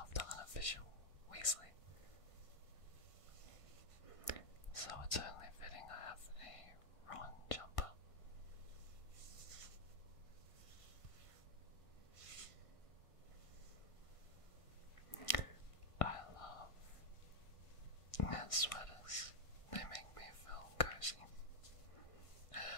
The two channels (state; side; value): late; right; 1.6 ms